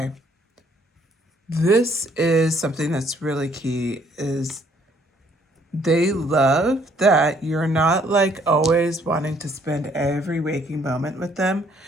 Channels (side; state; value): both; normal; correlation 0.64